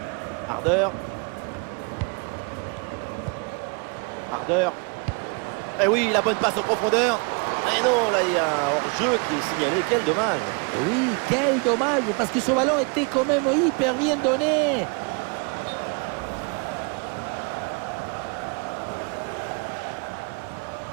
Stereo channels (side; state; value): left; quieter; 33.5 dB